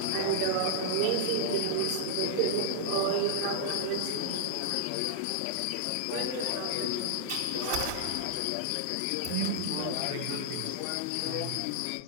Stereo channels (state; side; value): different; both; correlation -0.01